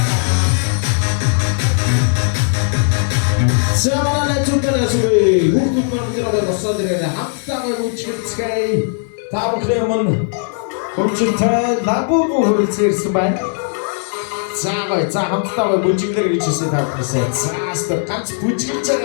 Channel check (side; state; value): right; silent; digital silence